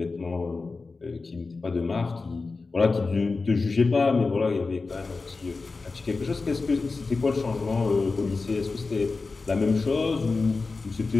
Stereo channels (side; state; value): right; quieter; 4.0 dB